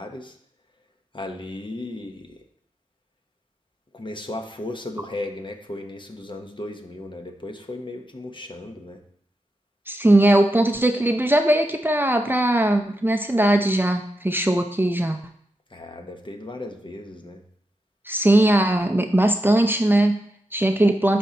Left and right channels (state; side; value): normal; both; correlation 0.86